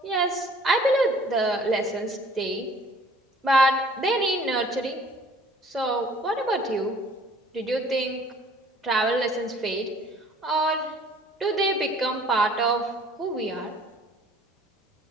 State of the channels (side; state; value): both; normal; correlation 0.54